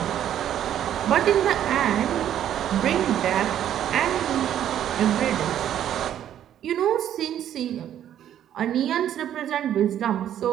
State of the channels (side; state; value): left; quieter; 10.7 dB